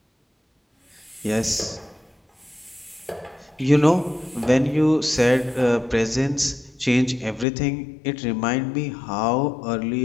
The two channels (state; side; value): drops out; right; at 7.5 s